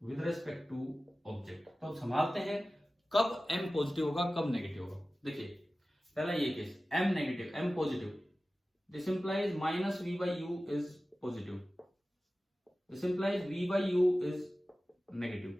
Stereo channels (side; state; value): both; normal; correlation 0.96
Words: विद रिस्पेक्ट टू ऑब्जेक्ट। तो संभालते हैं कब M पॉजिटिव होगा, कब नेगेटिव होगा। देखिए पहला ये case, M negative, M positive, this implies minus V by U is positive, this implies V by U is